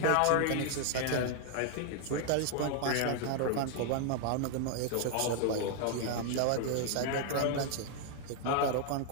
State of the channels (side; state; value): both; different; correlation 0.00